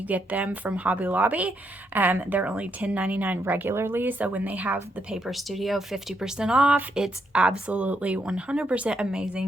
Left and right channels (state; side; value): normal; both; correlation 0.77